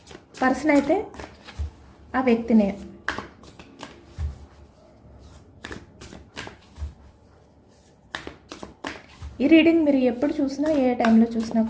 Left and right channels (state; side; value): identical; both; correlation 1.00